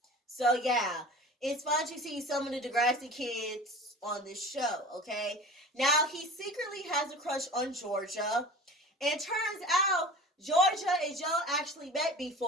So, yeah, it's fun to see some of the Degrassi kids on this show, okay? Now, he secretly has a crush on Georgia. And turns out, Georgia and Joe actually met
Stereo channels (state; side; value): normal; both; correlation 0.38